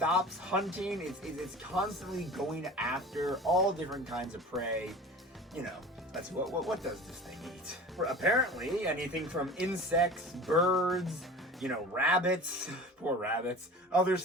hunting. It's constantly going after all different kinds of prey. That's what does this thing eat? Apparently, anything from insects, birds, rabbits, poor rabbits, other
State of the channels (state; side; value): normal; both; correlation 0.38